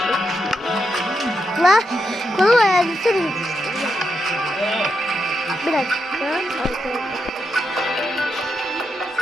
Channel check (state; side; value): normal; both; correlation 0.83